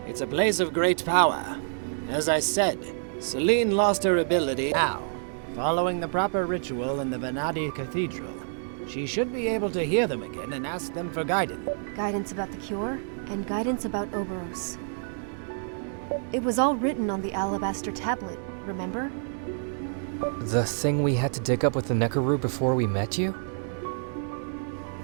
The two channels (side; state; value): left; silent; digital silence